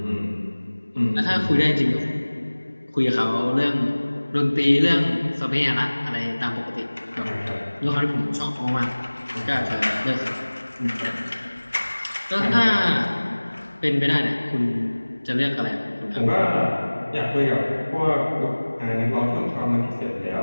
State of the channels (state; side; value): inverted; both; correlation -1.00